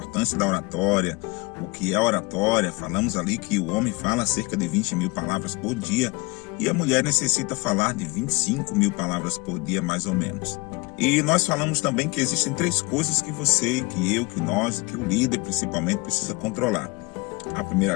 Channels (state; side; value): quieter; right; 25.8 dB